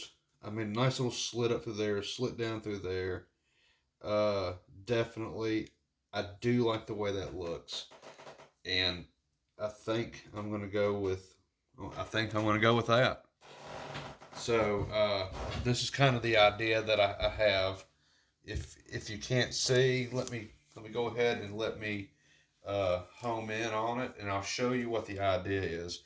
I mean, nice little slit up through there, slit down through there. Uh, Definitely, I do like the way that looks. And I think I'm going to go with, I think I'm going to go with that. So this is kind of the idea that I have. If you can't see, let me go ahead and let me home in on it, and I'll show you what the idea is.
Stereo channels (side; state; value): both; identical; correlation 1.00